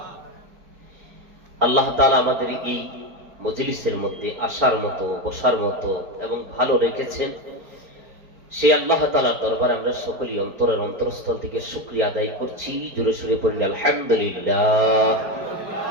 আল্লাহ তাআলা আমাদের এই মজলিসের মধ্যে আসার মতো, বসার মতো এবং ভালো রেখেছেন। সেই আল্লাহ তাআলার দরবারে আমরা সকলেই অন্তরের অন্তরস্থল থেকে শুকরিয়া আদায় করছি। জোরে সুরে পড়ি আলহামদুলিল্লাহ।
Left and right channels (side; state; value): left; late; 4.4 ms